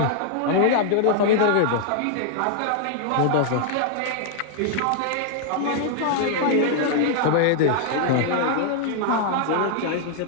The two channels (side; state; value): both; different; correlation 0.00